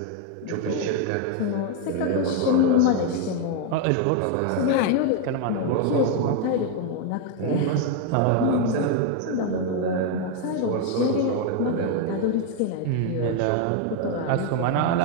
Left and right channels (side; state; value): both; different; correlation 0.01